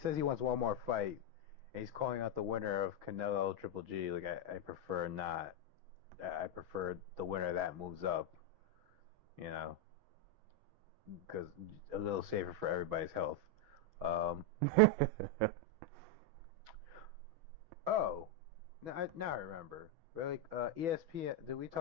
he wants one more fight, and he's calling out the winner of Canelo Triple G. Like, I prefer not. I prefer the winner that moves up, you know, because a little safer for everybody's health. Oh, now I remember. Really, ESPN. Did we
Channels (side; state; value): left; late; 6.2 ms